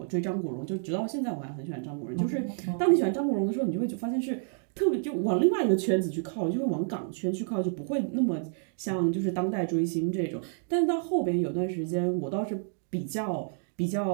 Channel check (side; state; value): left; silent; digital silence